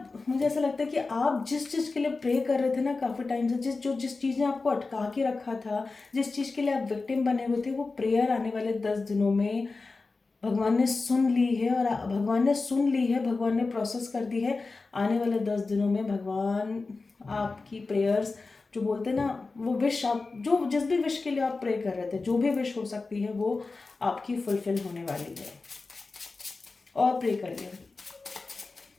मुझे ऐसा लगता है कि आप जिस चीज़ के लिए प्रे कर रहे थे ना काफ़ी टाइम से, जिस चीज़ ने आपको अटका के रखा था, जिस चीज़ के लिए आप विक्टिम बने हुए थे, वो प्रेयर आने वाले 10 दिनों में भगवान ने सुन ली है। और भगवान ने सुन ली है, भगवान ने प्रोसेस कर दी है। आने वाले 10 दिनों में भगवान आपकी प्रेयर्स, जो बोलते हैं ना, वो विश आप जो जिस भी विश के लिए आप प्रे कर रहे थे, जो भी विश हो सकती है, वो आपकी फुलफिल होने वाली है। और प्रे करिए,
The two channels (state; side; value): quieter; right; 3.8 dB